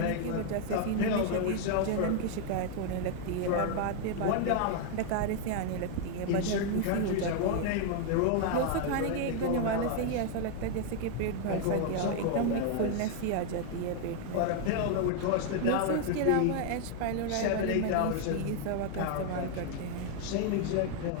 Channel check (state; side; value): different; both; correlation 0.00